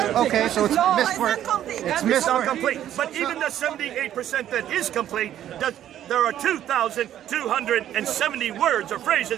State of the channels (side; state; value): left; quieter; 11.4 dB